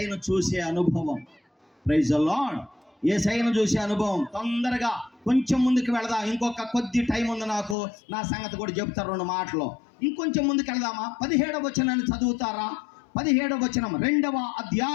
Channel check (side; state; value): right; drops out; at 7.8 s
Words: చూసే అనుభవం. Praise the lord. యేసయ్యను చూసే అనుభవం. తొందరగా కొంచెం ముందుకు వెళదాం. ఇంకొక కొద్ది టైం ఉంది నాకు. నా సంగతి కూడా చెప్తారు 2 మాటలు. ఇంకొంచెం ముందుకు వెళదామా? 17వ వచనాన్ని చదువుతారా? 17వ వచనం, 2వ